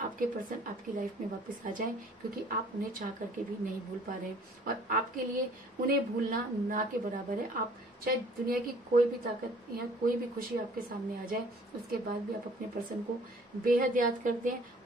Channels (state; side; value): normal; both; correlation 0.54